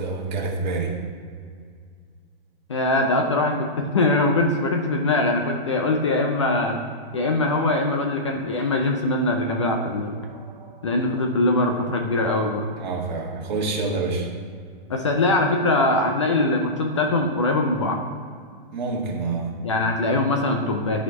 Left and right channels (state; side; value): normal; both; correlation -0.17